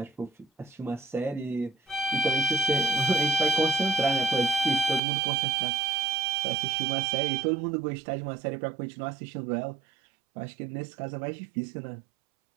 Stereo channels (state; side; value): drops out; left; at 5.0 s